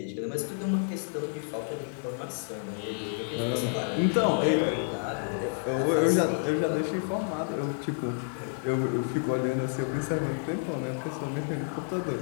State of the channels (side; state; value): right; silent; digital silence